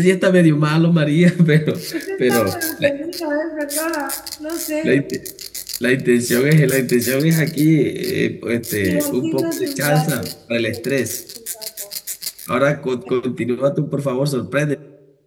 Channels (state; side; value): identical; both; correlation 1.00